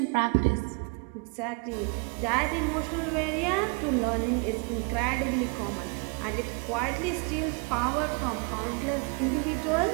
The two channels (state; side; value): quieter; left; 34.7 dB